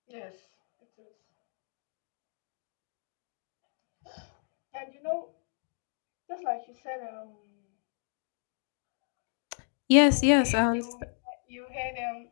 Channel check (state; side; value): silent; right; digital silence